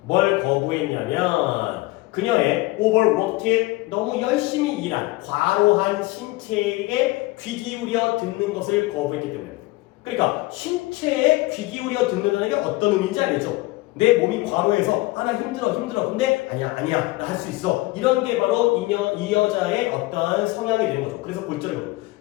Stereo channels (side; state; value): right; quieter; 20.8 dB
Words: 뭘 거부했냐면 그녀의 overworked, 너무 열심히 일한 과로한 신체에게 귀 기울여 듣는 것을 거부했기 때문에. 그러니까 신체에 귀 기울여 듣는다는 게 어떤 의미인지 알겠죠? 내 몸이 과로해서 나 힘들어 근데 아니야 나 할 수 있어 이런 게 바로 이 여자의 어떤 성향이 되는 거죠. 그래서 골절이고